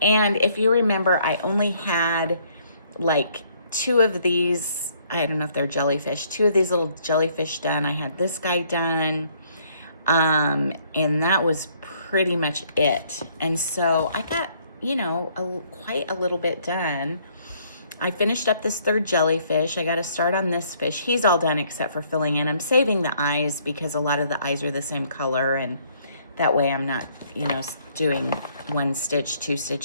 if you remember, I only had like 2 of these, I don't know if they're jellyfish, 2 of these little jellyfish done. I had this guy done, and that was pretty much it. And so I got, quite a little bit done. I finished up this 3rd jellyfish. I got to start on this fish. He's all done except for filling in. I'm saving the eyes because a lot of the eyes are the same color, and that way I'm not, doing 1 stitch, 2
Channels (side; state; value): both; inverted; correlation -0.65